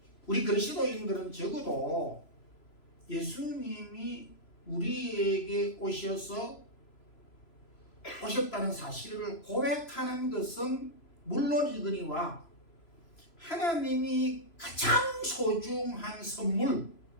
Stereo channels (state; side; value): late; right; 3.0 ms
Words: 우리 그리스도인들은 적어도 예수님이 우리에게 오셨다는 사실을 고백하는 것은 물론이거니와 하나님이 가장 소중한 선물